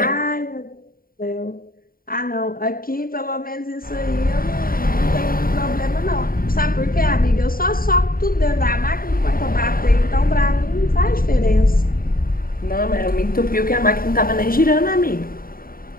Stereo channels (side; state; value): right; late; 0.42 ms